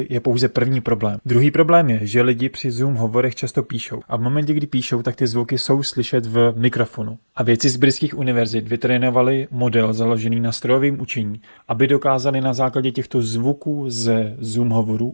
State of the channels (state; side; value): inverted; both; correlation -1.00